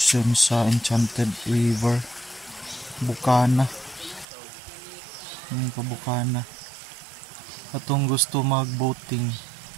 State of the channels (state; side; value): drops out; left; at 4.2 s